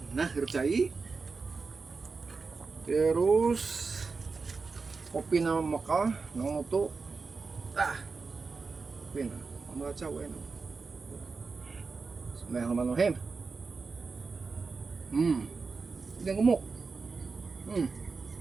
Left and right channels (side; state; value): left; quieter; 4.5 dB